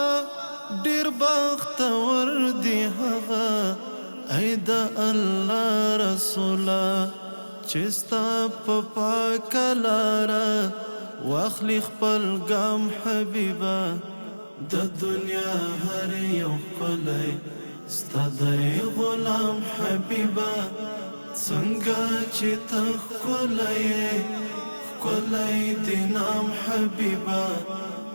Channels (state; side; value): inverted; both; correlation -1.00